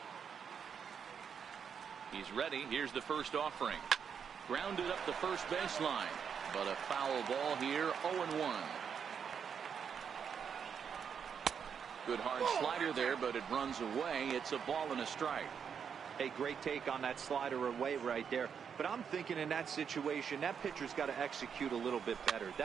He's ready. Here's the first offering. Grounded up the first baseline, but a foul ball here. 0-1. Good hard slider there, but it runs away. It's a ball and a strike. A great take on that slider away right there. But I'm thinking in that situation, that pitcher's got to execute a little bit better.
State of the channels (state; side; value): quieter; left; 7.1 dB